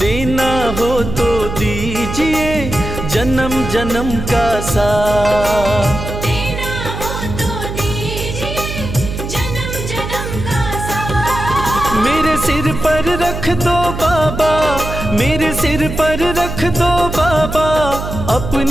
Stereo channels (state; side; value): noise; right; hum, 6 dB below the sound